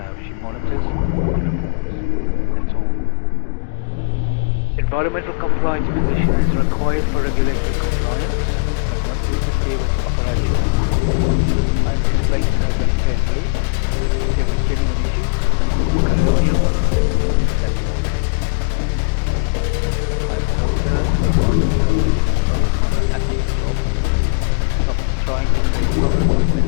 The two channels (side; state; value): right; silent; digital silence